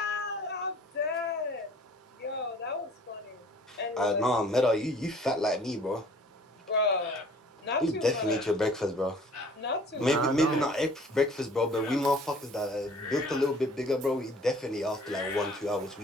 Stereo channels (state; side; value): normal; both; correlation 0.52